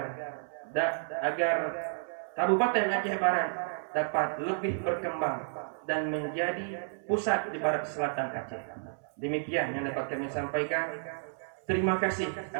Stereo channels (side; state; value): left; silent; 57 dB below the other